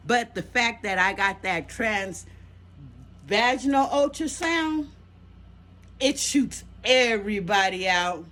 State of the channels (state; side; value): identical; both; correlation 1.00